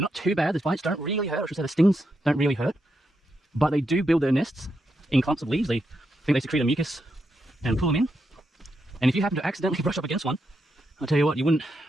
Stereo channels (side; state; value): both; normal; correlation 0.83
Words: not too bad. The bites don't really hurt. I should say the stings don't really hurt. But they do build their nests in clumps of leaves. They think they secrete a mucus and pull them in. And if you happen to accidentally brush up against one, I'll tell you what, you won't